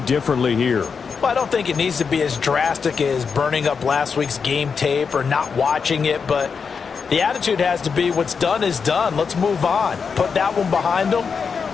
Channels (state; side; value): quieter; right; 5.8 dB